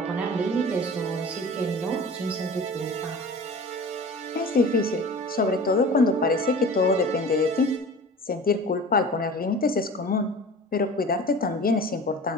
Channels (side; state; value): both; normal; correlation 0.39